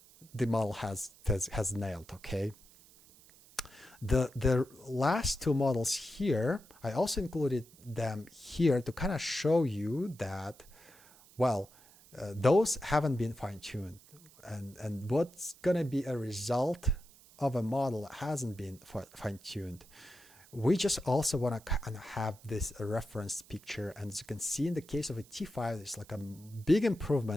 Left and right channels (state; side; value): noise; right; hiss, 24 dB below the sound